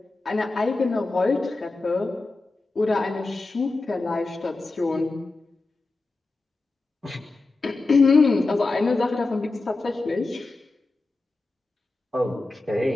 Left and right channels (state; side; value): quieter; right; 3.3 dB